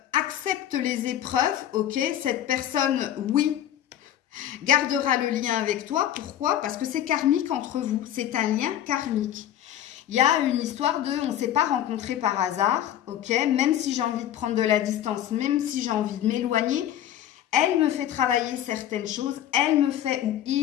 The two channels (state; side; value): quieter; right; 11.4 dB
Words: accepte les épreuves, ok? Cette personne, oui, gardera le lien avec toi. Pourquoi? Parce que c'est karmique entre vous. C'est un lien karmique. Il y a une histoire de, on ne s'est pas rencontrés par hasard, ok? Même si j'ai envie de prendre de la distance, même si j'ai envie de m'éloigner, elle me fait travailler certaines choses, elle me fait ou